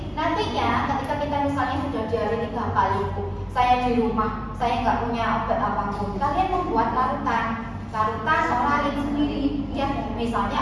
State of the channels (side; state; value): both; identical; correlation 1.00